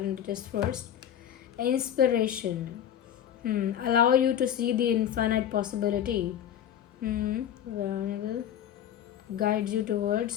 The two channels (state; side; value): quieter; right; 10.1 dB